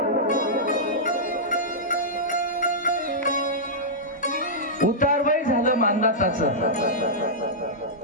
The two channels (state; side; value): normal; both; correlation -0.12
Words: उतारवय झालं मांधाताचं